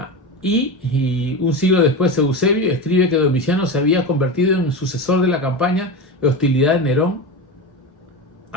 Y un siglo después Eusebio escribe que Domiciano se había convertido en sucesor de la campaña de hostilidad de Nerón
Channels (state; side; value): normal; both; correlation 0.22